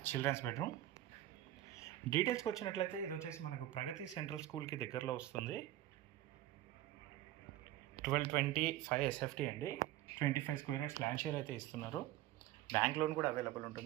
Children's bedroom. డీటెయిల్స్కి వచ్చినట్లయితే ఇది వచ్చేసి మనకు ప్రగతి సెంట్రల్ స్కూల్కి దగ్గరలో వస్తుంది. 1225 SFT అండి. 25 స్క్వేర్ యార్డ్స్ ల్యాండ్ షేర్ అయితే ఇస్తున్నారు. బ్యాంక్ లోన్ కూడా అవైలబుల్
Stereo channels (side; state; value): left; quieter; 14.3 dB